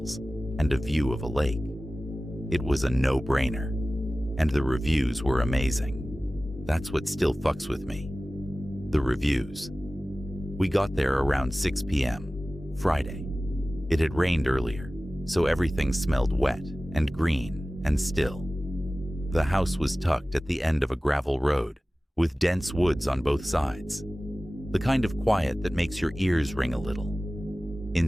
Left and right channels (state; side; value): normal; both; correlation 0.97